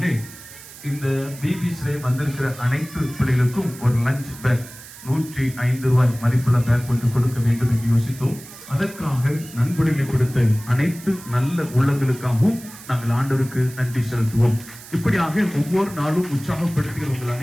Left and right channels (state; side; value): noise; right; hiss, 17 dB below the sound